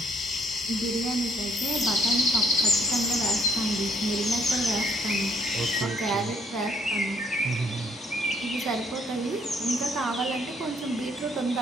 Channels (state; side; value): normal; both; correlation 0.65